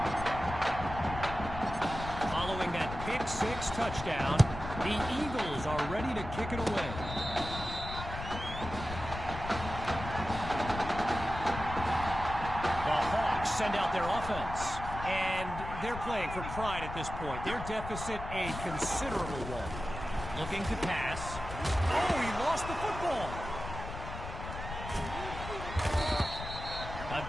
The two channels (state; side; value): noise; left; rumble, 8 dB below the sound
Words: Following that pick-6 touchdown, the Eagles are ready to kick it away. The Hawks send out their offense, and they're playing for pride at this point. Their deficit a considerable one. Looking to pass. Oh, he lost the football. A